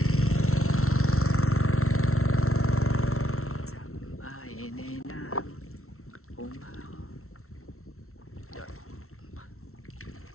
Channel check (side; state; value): right; late; 0.63 ms